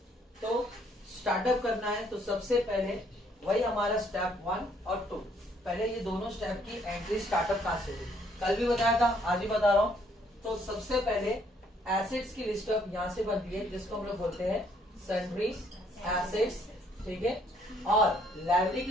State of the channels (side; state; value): both; normal; correlation 0.66